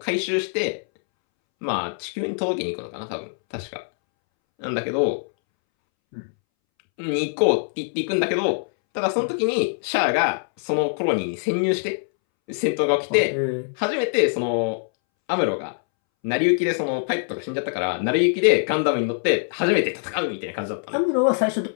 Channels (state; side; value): silent; right; 63 dB below the other